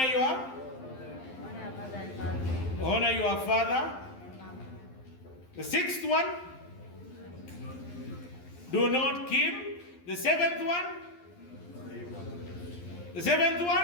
your honor your father. The sixth one? Do not kill. The seventh one? The seventh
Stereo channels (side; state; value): right; late; 12 ms